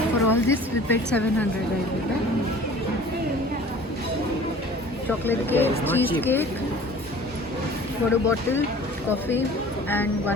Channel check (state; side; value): normal; both; correlation 0.46